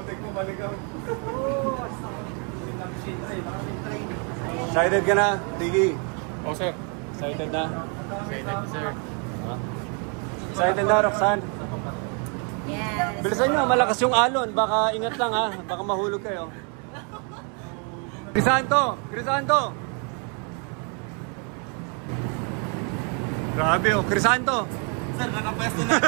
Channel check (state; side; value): quieter; left; 37.7 dB